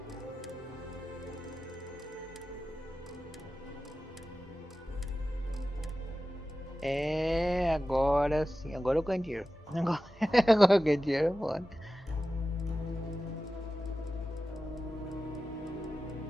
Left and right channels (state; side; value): normal; both; correlation 0.94